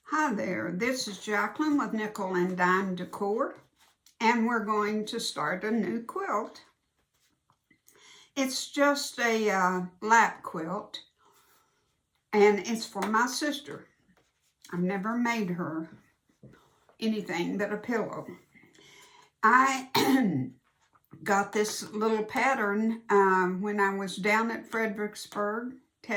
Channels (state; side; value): identical; both; correlation 1.00